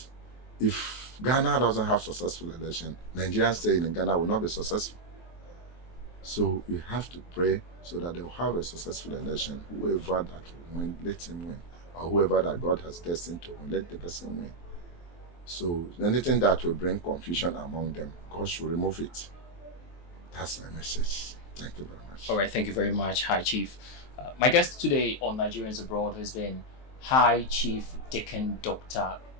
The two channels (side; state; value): right; late; 23 ms